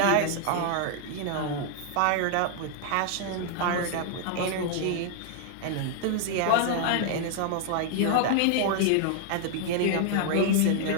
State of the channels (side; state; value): both; different; correlation 0.00